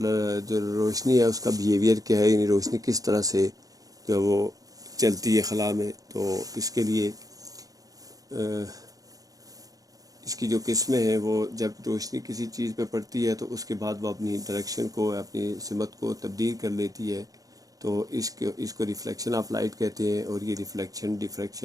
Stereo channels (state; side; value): late; left; 0.17 ms